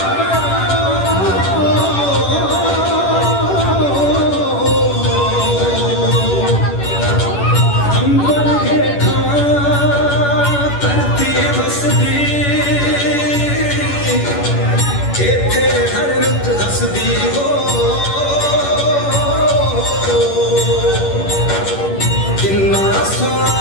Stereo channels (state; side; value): late; right; 10 ms